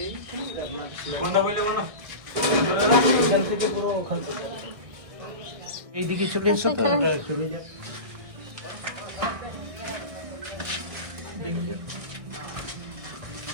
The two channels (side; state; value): left; late; 1.6 ms